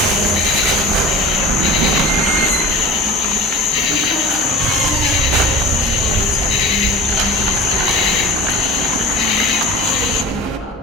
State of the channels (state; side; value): normal; both; correlation 0.38